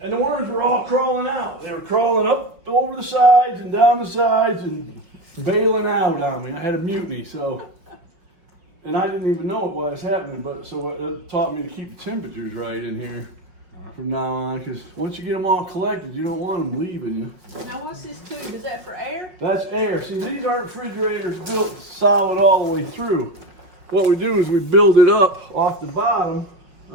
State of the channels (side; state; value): left; late; 5.5 ms